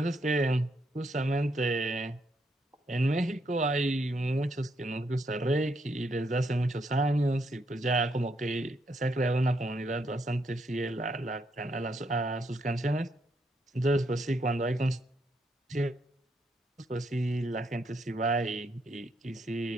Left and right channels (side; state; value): both; normal; correlation 0.76